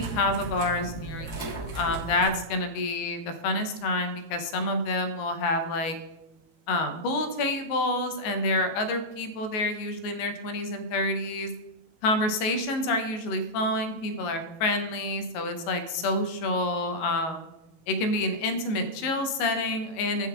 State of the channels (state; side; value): late; right; 19 ms